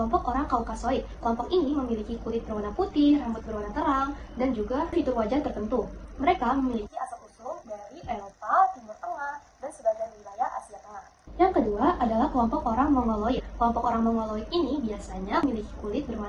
orang Kaukasoid. Kelompok ini memiliki kulit berwarna putih, rambut berwarna terang, dan juga fitur wajah tertentu. Mereka memiliki asal-usul dari Eropa, Timur Tengah, dan sebagian wilayah Asia Tengah. Yang kedua adalah kelompok orang Mongoloid. Kelompok orang Mongoloid ini biasanya memiliki kulit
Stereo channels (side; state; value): both; identical; correlation 1.00